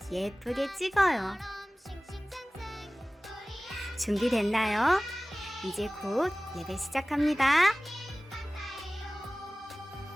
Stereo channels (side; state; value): both; normal; correlation 0.98